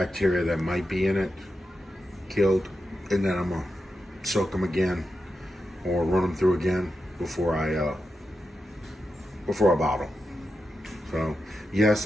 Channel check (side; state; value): both; normal; correlation 0.89